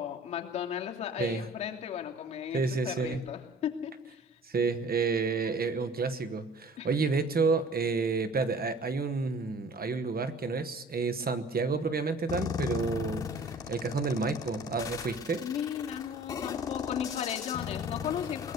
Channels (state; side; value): normal; both; correlation 0.47